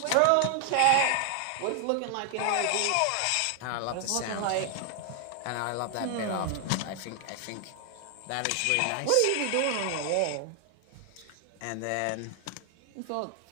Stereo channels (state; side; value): different; both; correlation 0.00